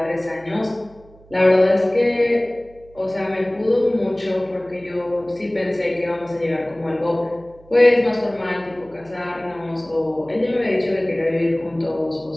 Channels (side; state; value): right; noise; hum, 25 dB below the sound